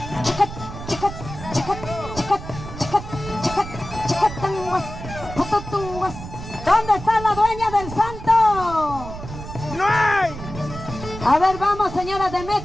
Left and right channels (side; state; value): right; noise; rumble, 11 dB below the sound